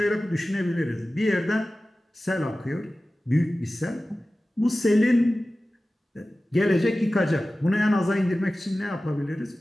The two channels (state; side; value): normal; both; correlation 0.96